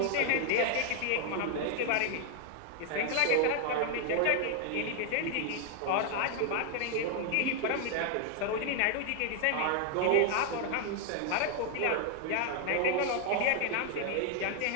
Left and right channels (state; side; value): different; both; correlation 0.00